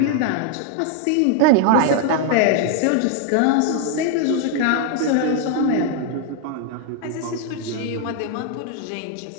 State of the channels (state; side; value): different; both; correlation 0.00